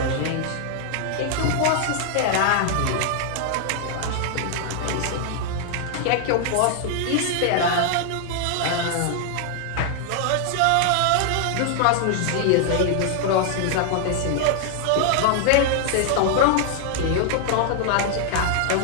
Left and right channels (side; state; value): both; different; correlation 0.00